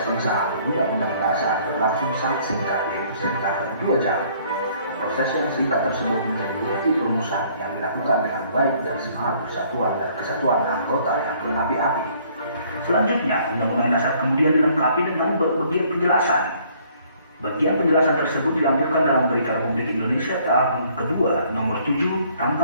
pengesahan Undang-Undang Dasar berlangsung sangat singkat, yaitu sekitar 2 jam. Proses yang singkat tersebut menjadi bukti perumusan yang dilakukan dengan baik dan semangat persatuan dan kesatuan anggota yang berapi-api. Selanjutnya, Undang-Undang Dasar kemudian dilengkapi dengan berbagai penjelasan. Bagian penjelasan tersebut dilampirkan dalam Berita Republik Indonesia tahun kedua nomor 7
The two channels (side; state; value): both; inverted; correlation -0.61